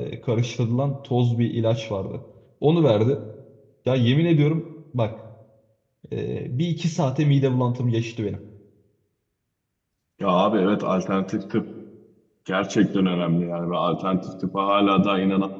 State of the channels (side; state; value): both; identical; correlation 1.00